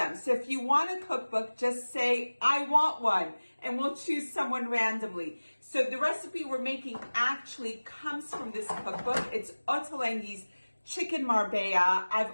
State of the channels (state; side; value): inverted; both; correlation -1.00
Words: So if you want a cookbook, just say, I want one, and we'll choose someone randomly. So the recipe we're making actually comes from this cookbook. It's Ottolenghi's Chicken Marbella.